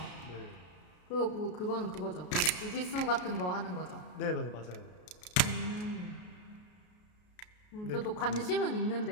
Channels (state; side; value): late; right; 33 ms